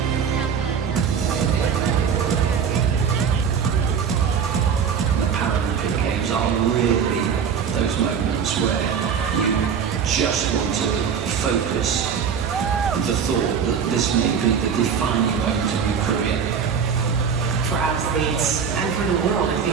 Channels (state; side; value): quieter; left; 7.0 dB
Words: The Paralympic Games are really those moments where you just want to focus the thought that this may be the defining moment of your career. For athletes and for the world, I